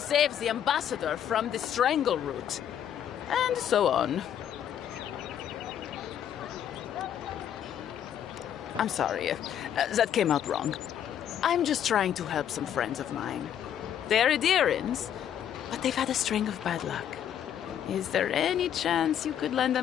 the ambassador from the strangle root. And so on. I'm sorry. That came out wrong. I'm just trying to help some friends of mine. They're Adirans, but they've had a string of bad luck. Is there any chance you could lend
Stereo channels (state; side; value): quieter; right; 9.8 dB